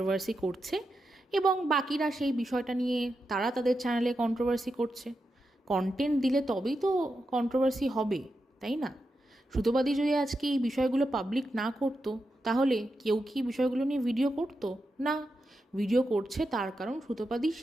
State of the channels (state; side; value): normal; both; correlation 0.88